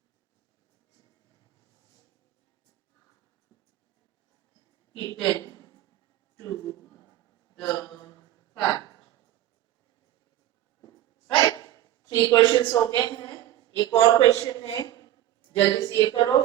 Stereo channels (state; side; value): quieter; left; 13.1 dB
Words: kitten to the cat. Right, 3 questions हो गए हैं। एक और क्वेश्चन है, जल्दी से ये करो,